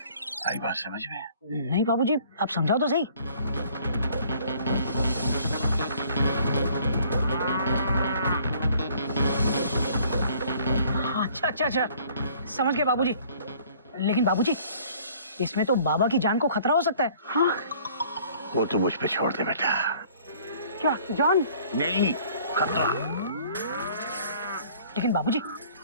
आई बात समझ में? नहीं बाबूजी, आप समझाओ तो सही। अच्छा अच्छा अच्छा, समझ गए बाबूजी। लेकिन बाबूजी, इसमें तो बाबा की जान को खतरा हो सकता है। हाँ, वो तो मुझ पे छोड़ दे बेटा। क्या जान? नहीं, खतरा। लेकिन बाबूजी,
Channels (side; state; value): both; inverted; correlation -0.56